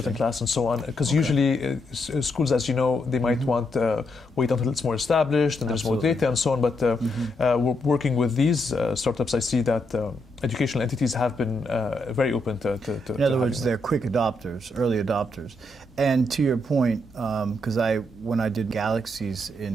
class and so on. Because usually schools, as you know, they might want to wait until it's more established and there's more data and so on. But working with these startups, I see that educational entities have been very open to in other words, they're quick adopters, early adopters. And to your point, because when I did Galaxies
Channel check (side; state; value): both; normal; correlation 0.79